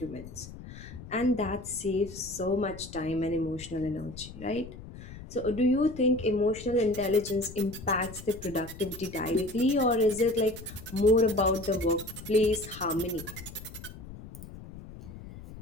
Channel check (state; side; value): noise; left; rumble, 14 dB below the sound